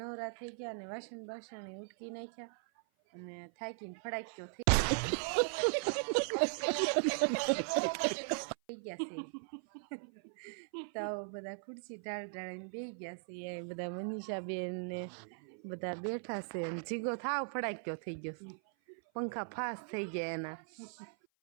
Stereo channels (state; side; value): silent; left; 52 dB below the other